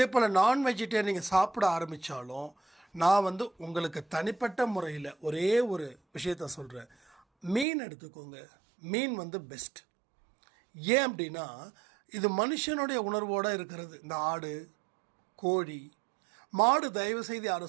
போல் நான் வெஜிடேரியன் நீங்கள் சாப்பிட ஆரம்பித்தாலும் நான் வந்து உங்களுக்கு தனிப்பட்ட முறையில் ஒரே ஒரு விஷயத்த சொல்கிறேன். மீன் எடுத்துக்கோங்க. மீன் வந்து பெஸ்ட். ஏன் அப்படின்னா இது மனுஷனுடைய உணர்வோடு இருக்கிறது. இந்த ஆடு, கோழி, மாடு தயவு செய்து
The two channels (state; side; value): drops out; left; at 7.7 s